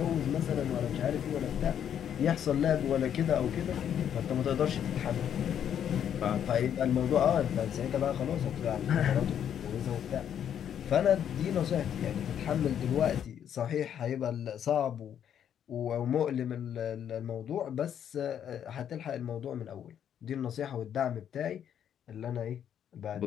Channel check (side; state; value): right; quieter; 9.3 dB